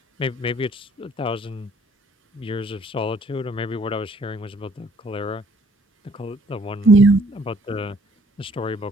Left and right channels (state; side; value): normal; both; correlation 0.61